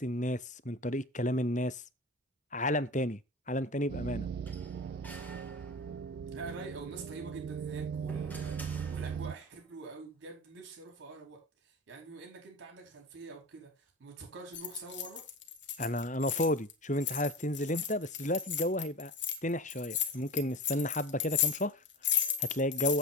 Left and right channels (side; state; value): both; normal; correlation 0.30